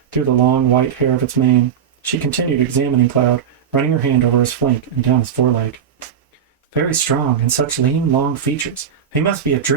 through the long white hair of its mane. She continued examining Cloud, running her hand over his flank and down his foreleg. "Very strong, and such lean, long features. He must be a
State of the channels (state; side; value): quieter; left; 8.0 dB